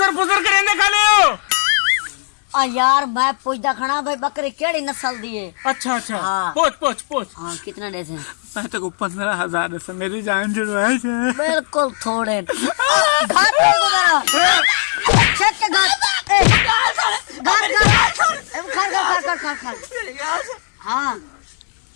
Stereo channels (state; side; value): silent; right; digital silence